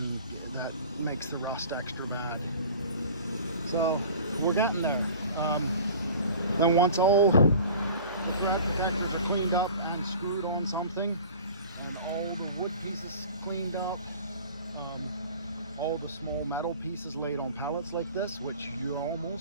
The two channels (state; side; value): inverted; both; correlation -0.43